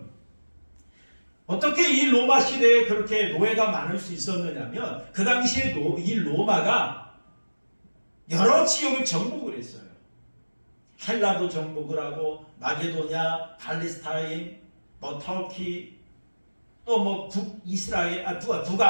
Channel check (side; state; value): both; inverted; correlation -1.00